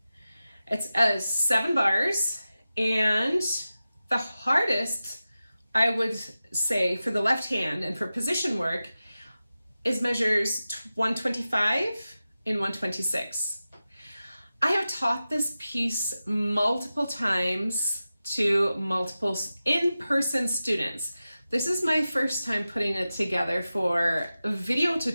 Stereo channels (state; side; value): inverted; both; correlation -0.94